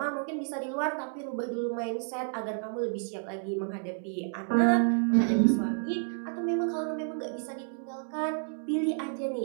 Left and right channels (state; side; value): silent; left; 58 dB below the other